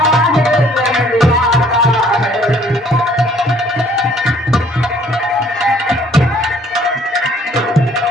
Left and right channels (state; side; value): normal; both; correlation 0.59